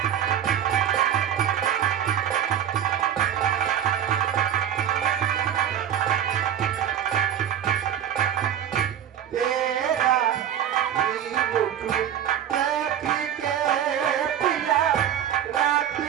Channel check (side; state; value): left; quieter; 9.7 dB